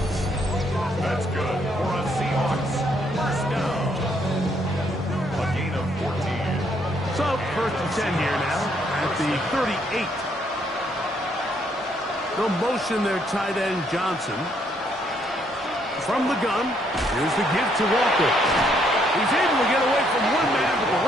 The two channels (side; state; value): both; normal; correlation 0.71